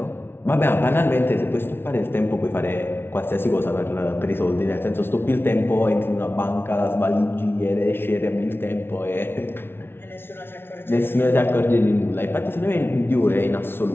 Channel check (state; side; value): late; right; 0.11 ms